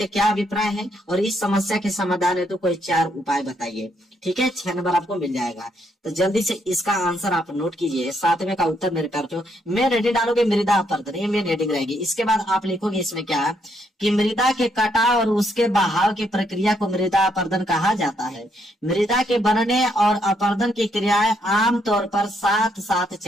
क्या अभिप्राय है और इस समस्या के समाधान है तो कोई 4 उपाय बताइए। ठीक है, 6 नंबर आपको मिल जाएगा। तो जल्दी से इसका आंसर आप नोट कीजिए। 7वें का उत्तर मेरे प्यार जो मैं रेडी डालोगे मृदा अपरदन, ये मेन हेडिंग रहेगी। इसके बाद आप लिखोगे इसमें क्या कि मृदा के कटाव और उसके बहाव की प्रक्रिया को मृदा अपरदन कहा जाता है। मृदा के बनने और अपरदन की क्रियाएं आमतौर पर साथ साथ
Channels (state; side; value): normal; both; correlation 0.74